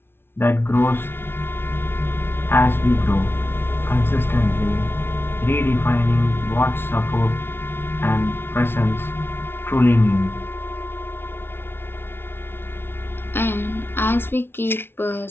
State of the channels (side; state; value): right; late; 0.11 ms